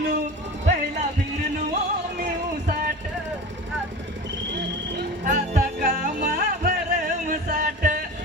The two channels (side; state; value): both; normal; correlation 0.33